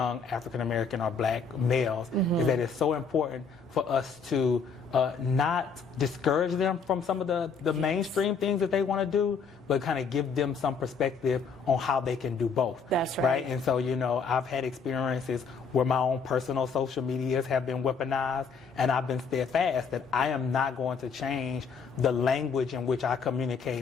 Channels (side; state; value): right; quieter; 5.4 dB